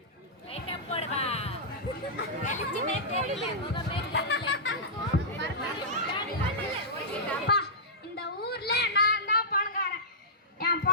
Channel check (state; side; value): normal; both; correlation -0.13